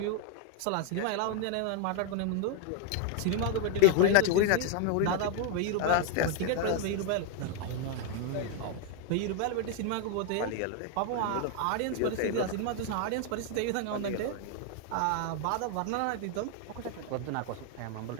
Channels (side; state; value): both; different; correlation 0.00